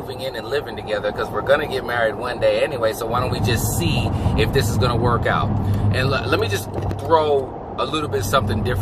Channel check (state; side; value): identical; both; correlation 1.00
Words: in and living together? Because we're going to get married one day anyway, so why don't we just see if this is going to work out? And let me just throw a little bit something